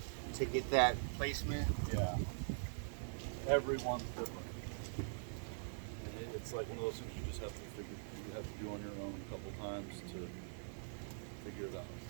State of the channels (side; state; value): left; silent; digital silence